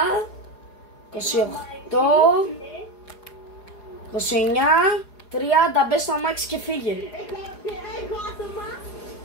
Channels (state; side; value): late; right; 4.8 ms